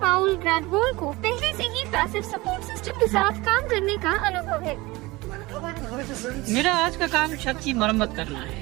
पाउल ग्रैडवॉल को पहले से ही पैसिव सपोर्ट सिस्टम के साथ काम करने का अनुभव है। मेरा आज का काम छत की मरम्मत करना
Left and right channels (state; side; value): quieter; left; 21.4 dB